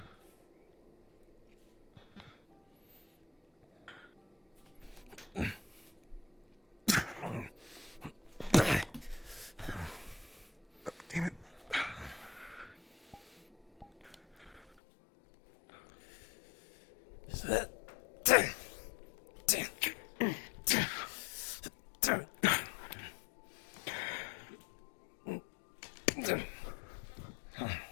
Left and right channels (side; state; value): right; drops out; at 14.6 s